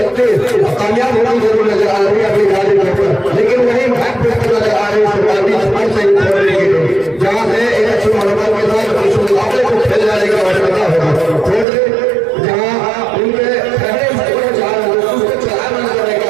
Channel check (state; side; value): drops out; left; at 11.7 s